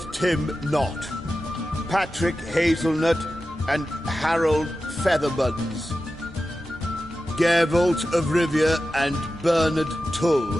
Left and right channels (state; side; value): normal; both; correlation 0.93